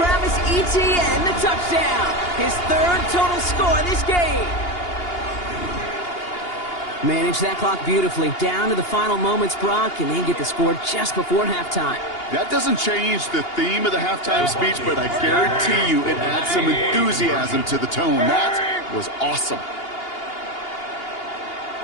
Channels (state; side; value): late; right; 2.8 ms